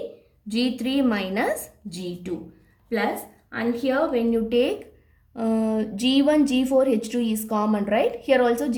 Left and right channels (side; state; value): both; identical; correlation 1.00